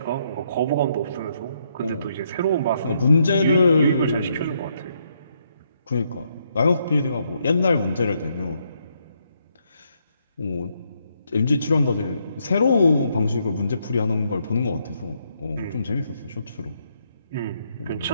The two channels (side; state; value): both; inverted; correlation -0.75